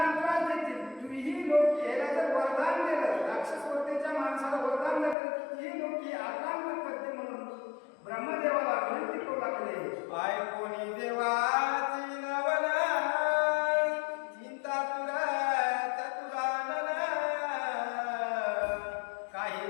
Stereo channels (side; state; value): right; drops out; at 5.2 s